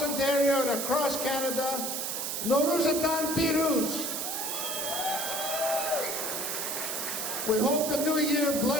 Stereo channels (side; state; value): right; noise; hiss, 2 dB below the sound